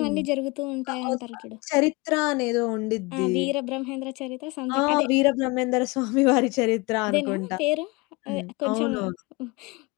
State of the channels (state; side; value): quieter; right; 25.7 dB